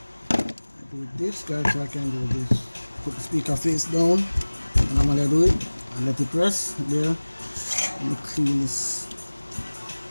I do this, guys, so I can do this. Put the speaker face down, and I'm gonna do it and let it rest there. Let me clean this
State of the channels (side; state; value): both; inverted; correlation -1.00